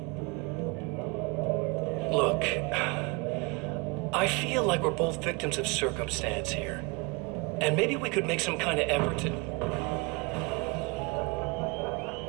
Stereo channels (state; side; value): quieter; left; 28.7 dB